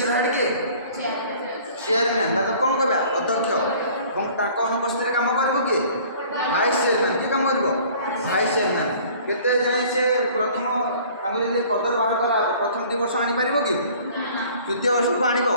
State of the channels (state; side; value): inverted; both; correlation -0.51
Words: हेड किए चेयरमैन तो कौन कह अध्यक्ष अनुपस्थित काम कर किए भाइस चेयरमैन किए काम कर भाइस चेयरमैन केते जाए से प्रथम जब पदर बाहर करा प्रथम 2 वर्ष आनीपर कि तृतीय वर्ष को आण